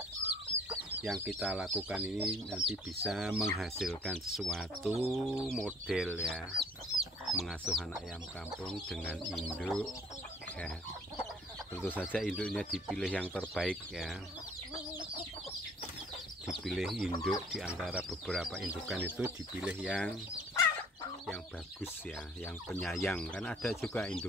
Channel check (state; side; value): normal; both; correlation 0.56